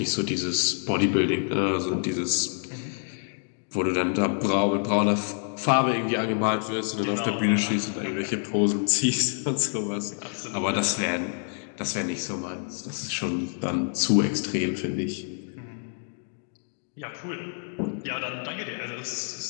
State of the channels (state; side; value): silent; right; 60 dB below the other